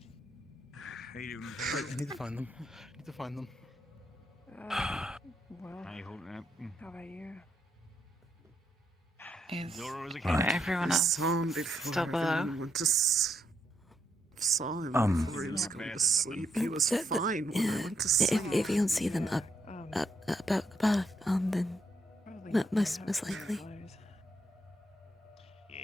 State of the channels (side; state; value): both; normal; correlation 0.77